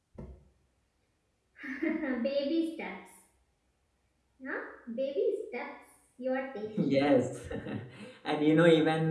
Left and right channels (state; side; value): identical; both; correlation 1.00